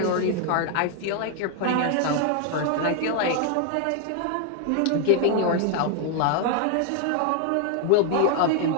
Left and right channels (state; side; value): different; both; correlation 0.00